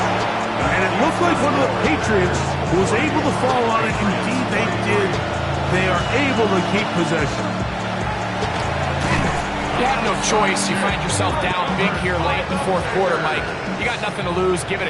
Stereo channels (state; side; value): identical; both; correlation 1.00